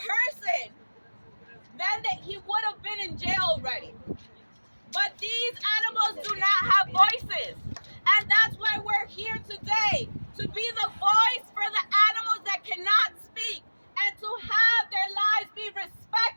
then he would have been in jail already. But these animals do not have voices. And that's why we're here today, to be the voice for the animals that cannot speak, and to have their lives be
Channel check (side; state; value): both; inverted; correlation -1.00